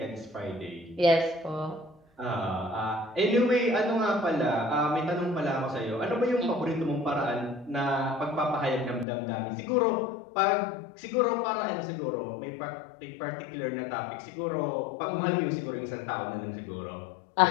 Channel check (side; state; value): right; drops out; at 9.1 s